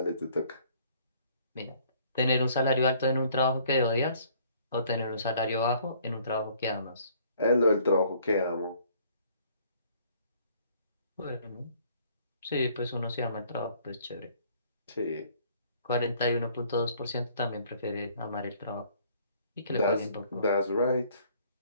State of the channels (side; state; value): both; inverted; correlation -0.59